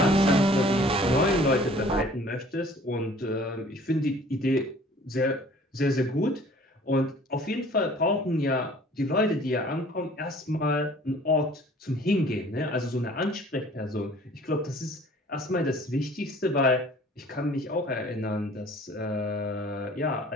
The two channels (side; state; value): both; normal; correlation 0.52